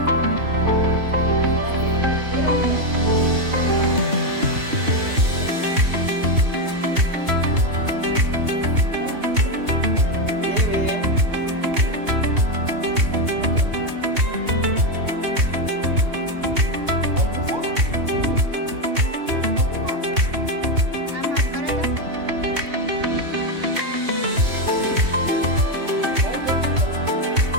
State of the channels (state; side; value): late; left; 2.9 ms